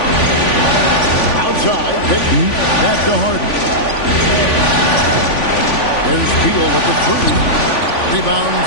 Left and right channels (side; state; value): right; late; 3.5 ms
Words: Outside, Payton. Back to Harden. There's Beal with the three. Rebound,